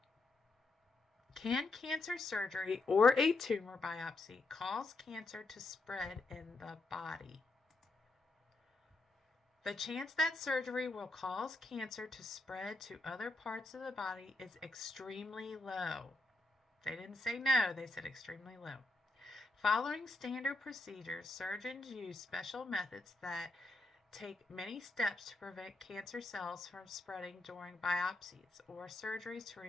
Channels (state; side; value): quieter; right; 3.1 dB